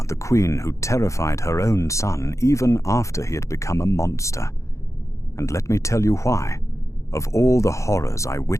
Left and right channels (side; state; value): right; late; 0.15 ms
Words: the queen who terrified her own son even after he had become a monster. And let me tell you why, of all the horrors I